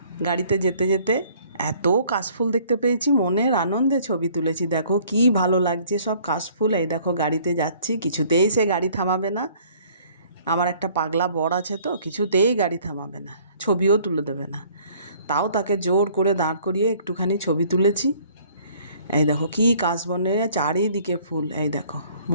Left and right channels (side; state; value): both; inverted; correlation -0.57